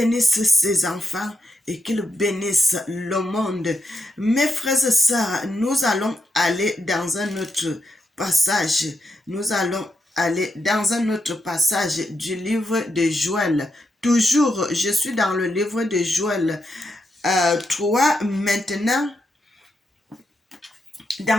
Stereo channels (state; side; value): normal; both; correlation 0.82